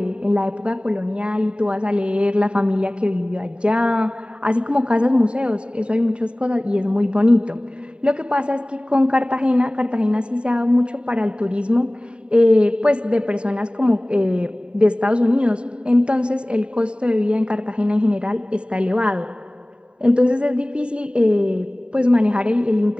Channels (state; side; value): late; left; 0.053 ms